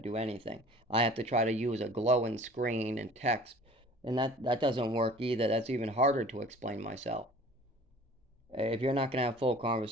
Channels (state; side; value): normal; both; correlation 0.47